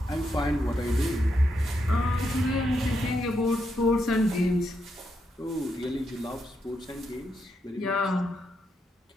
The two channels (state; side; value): normal; both; correlation 0.81